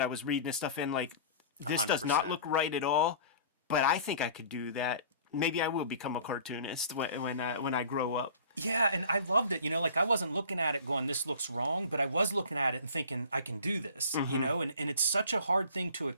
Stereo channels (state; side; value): inverted; both; correlation -0.44